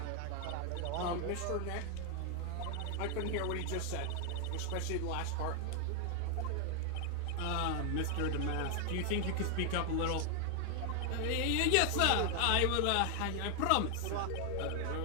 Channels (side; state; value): both; different; correlation 0.01